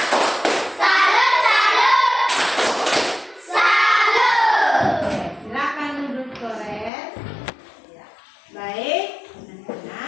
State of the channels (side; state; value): right; drops out; at 6.9 s